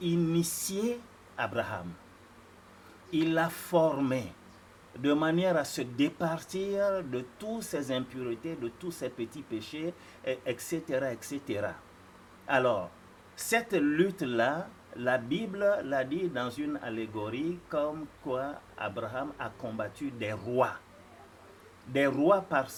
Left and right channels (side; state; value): both; identical; correlation 1.00